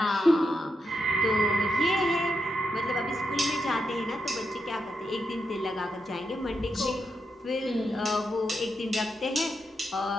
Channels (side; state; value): both; normal; correlation 0.84